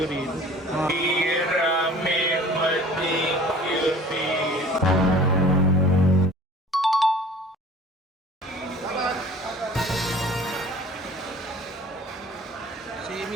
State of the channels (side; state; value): both; normal; correlation 0.47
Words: rito. Bira may madikyo rito. Si